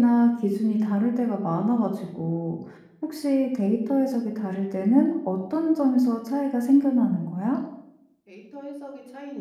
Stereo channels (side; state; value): both; identical; correlation 1.00